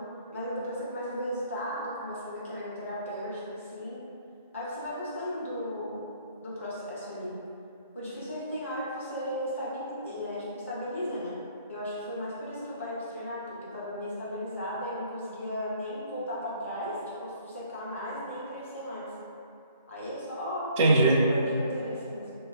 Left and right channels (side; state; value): both; inverted; correlation -0.59